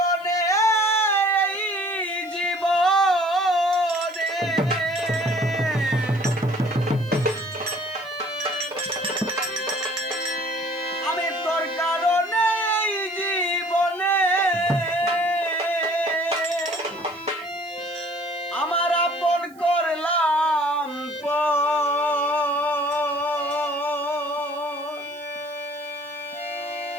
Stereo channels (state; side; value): noise; right; hiss, 28 dB below the sound